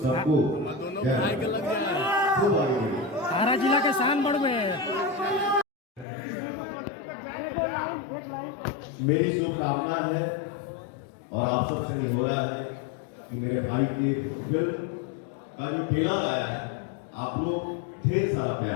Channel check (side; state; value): right; drops out; at 6.1 s